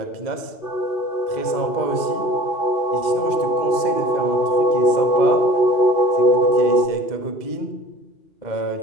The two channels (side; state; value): right; late; 2.1 ms